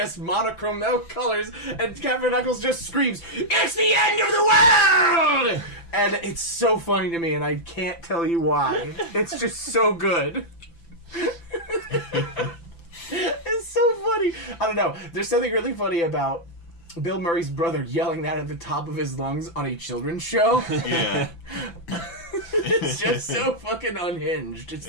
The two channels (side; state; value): right; late; 5.9 ms